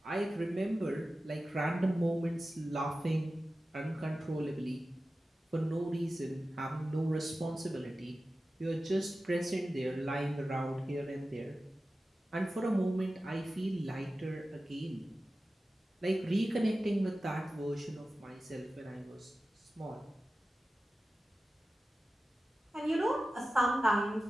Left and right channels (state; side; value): normal; both; correlation 0.94